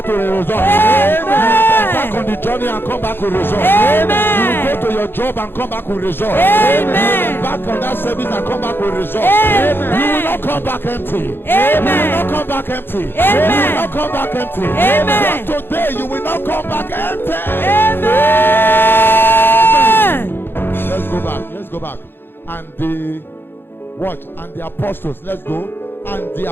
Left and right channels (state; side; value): late; right; 0.10 ms